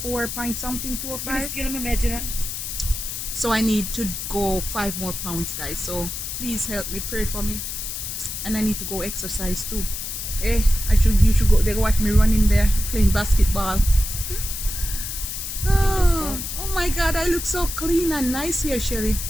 point something, 205. So I need to go 5 more pounds, guys. So please help me, pray for me, and I need to go exercise too. Eh, you should go. They watch me running there playing basketball. Oh my God, I look so clean and nice here, Shelly.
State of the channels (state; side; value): noise; left; hiss, 5 dB below the sound